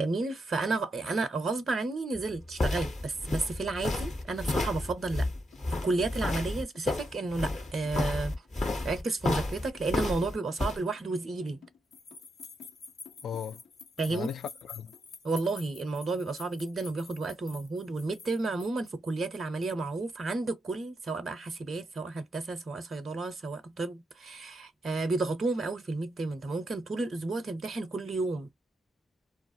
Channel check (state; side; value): normal; both; correlation 0.83